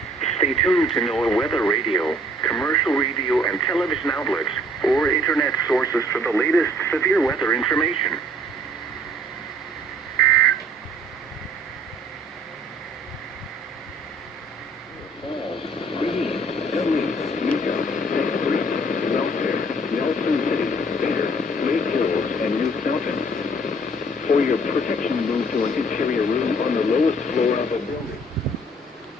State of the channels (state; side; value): normal; both; correlation 0.57